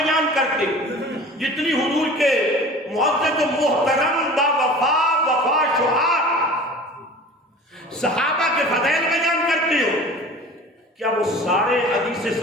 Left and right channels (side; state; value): both; normal; correlation 0.41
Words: کرتے، جتنی حضور کے معزز و محترم با وفا شعار صحابہ کے فضائل بیان کرتے ہو، کیا وہ سارے حدیث